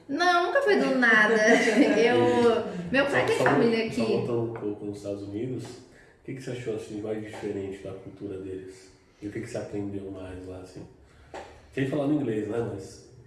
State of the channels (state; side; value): identical; both; correlation 1.00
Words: Não, nunca foi do nada. Meu pai tem família aqui. Só voltando um pouco nos Estados Unidos, o que você achou assim, mais diferente da cultura deles? E o que você aprendeu mais lá, assim? Sem falar no inglês, né, mas...